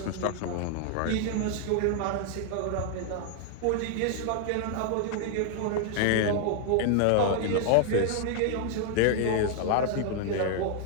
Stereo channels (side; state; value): both; different; correlation 0.00